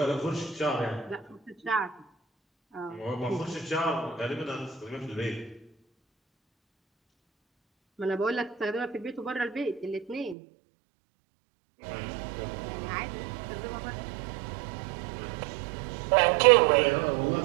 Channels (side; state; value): left; drops out; at 10.4 s